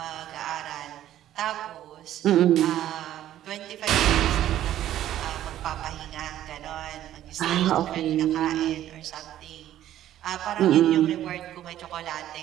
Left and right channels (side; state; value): left; quieter; 12.4 dB